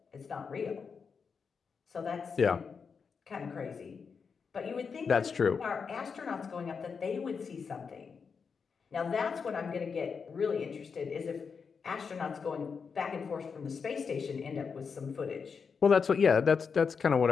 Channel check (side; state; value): right; quieter; 5.7 dB